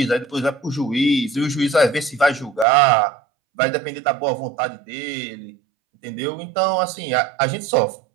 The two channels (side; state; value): left; drops out; at 2.7 s